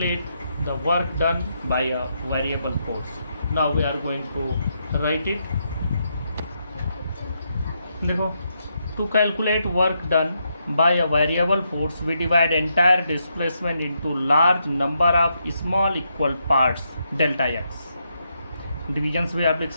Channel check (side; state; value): both; inverted; correlation -0.80